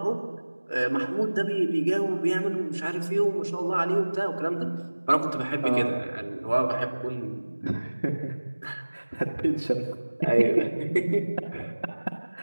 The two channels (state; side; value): inverted; both; correlation -1.00